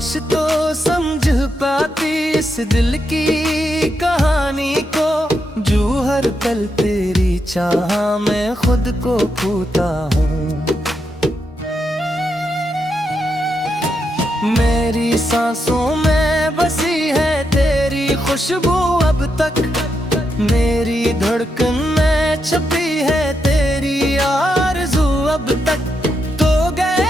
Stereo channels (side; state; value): both; normal; correlation 0.83